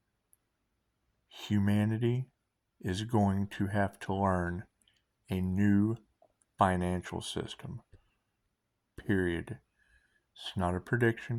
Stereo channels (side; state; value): both; identical; correlation 1.00